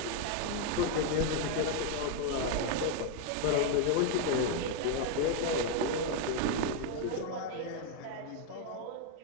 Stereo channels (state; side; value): different; both; correlation 0.00